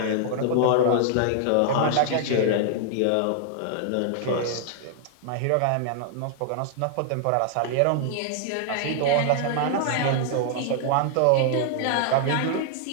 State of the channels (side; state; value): both; different; correlation 0.00